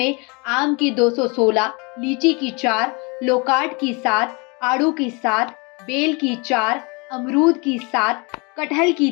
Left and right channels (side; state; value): right; quieter; 29.8 dB